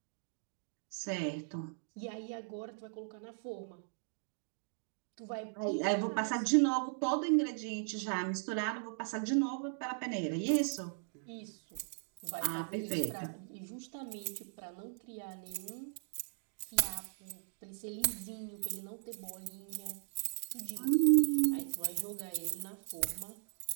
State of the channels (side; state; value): left; silent; digital silence